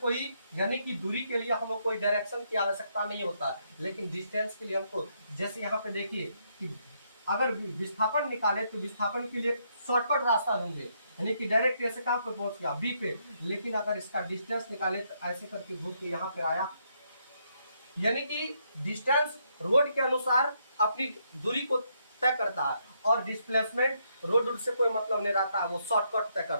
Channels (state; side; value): inverted; both; correlation -0.75